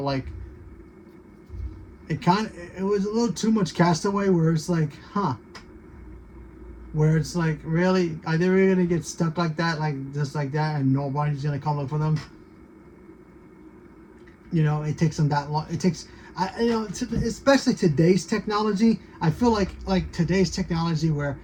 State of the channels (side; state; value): both; identical; correlation 1.00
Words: like it was a little too much Castaway, where it's like, where it's like, really, are they really gonna get stuck like that, like just like that, and nobody's gonna come look for them? You know, it takes them that long. It takes, especially today's technology. I feel like today's technology, where